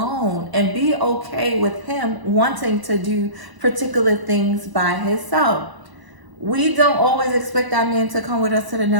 and be okay with him wanting to do particular things by himself. We don't always expect our man to come with us to the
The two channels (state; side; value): late; left; 1.0 ms